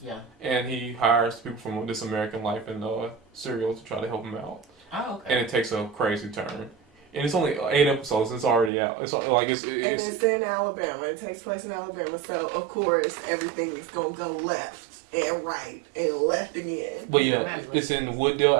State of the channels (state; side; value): drops out; left; at 8.7 s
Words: Yeah. And he hires people from This American Life and Serial to try to help him out. Oh, okay. And it takes a crazy turn. And it's only 8 episodes. It's already out. It's in Alabama. It takes place in Alabama, so of course everything is gonna go left and right and left again. But yeah, it's in